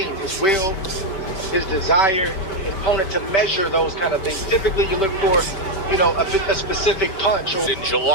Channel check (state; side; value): late; right; 5.2 ms